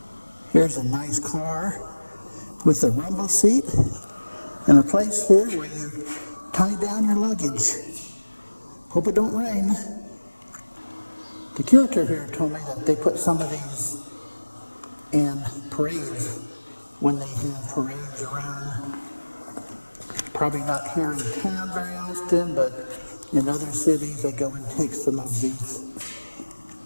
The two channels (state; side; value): inverted; both; correlation -1.00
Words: Here's a nice car with a rumble seat and a place here where you tie down your luggage. Hope it don't rain. The curator here told me that they put some of these in parades when they have parades around. Probably not here in town very often, but in other cities they go and take some of these